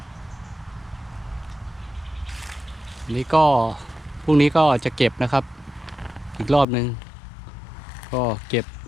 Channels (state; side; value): drops out; right; at 6.7 s